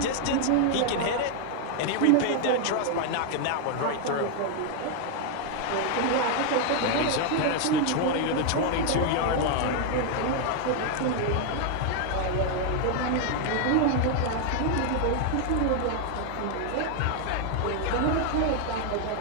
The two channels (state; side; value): different; both; correlation 0.00